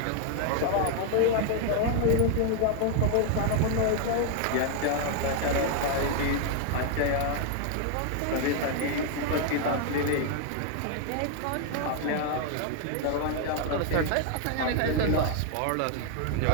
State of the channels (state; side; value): different; both; correlation 0.00